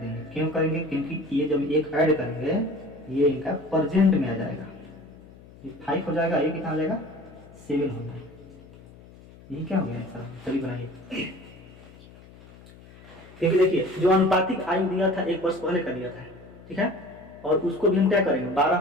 क्यों करेंगे? क्योंकि ये जब एक ऐड करेंगे ये इनका प्रेजेंट में आ जाएगा। ये 5 हो जाएगा, ये कितना हो जाएगा? 7 हो जाएगा। ये क्या हो गया आंसर? चलिए बनाइए। क्योंकि देखिए, जो अनुपातिक आयु दिया था एक वर्ष पहले का दिया था, ठीक है, और उसको भी हम क्या करेंगे? 12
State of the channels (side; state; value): left; noise; hum, 21 dB below the sound